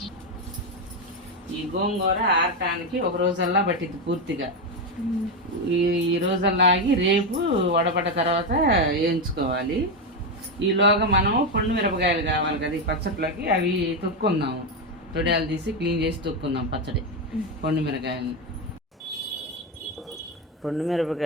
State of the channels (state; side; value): normal; both; correlation 0.09